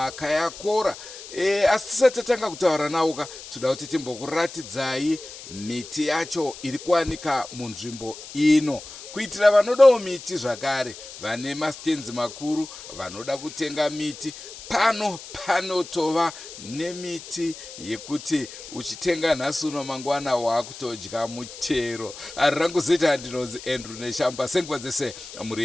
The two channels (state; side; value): noise; left; hiss, 14 dB below the sound